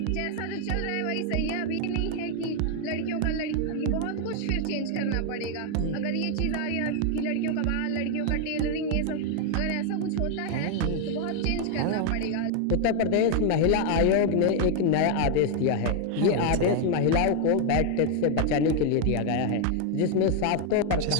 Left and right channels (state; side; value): different; both; correlation 0.00